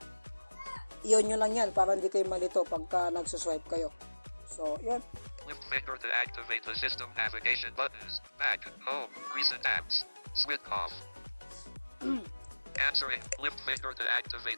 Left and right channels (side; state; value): both; inverted; correlation -1.00